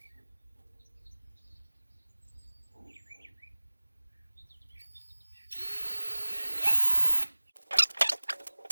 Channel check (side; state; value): both; inverted; correlation -1.00